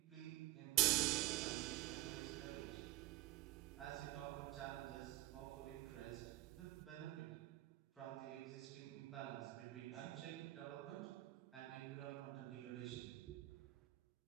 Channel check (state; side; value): quieter; left; 18.0 dB